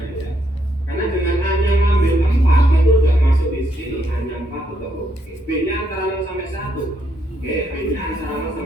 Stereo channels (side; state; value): both; normal; correlation 0.76